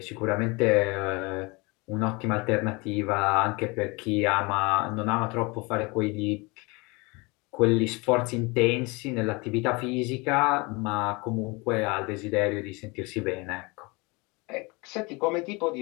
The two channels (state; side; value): quieter; right; 26.6 dB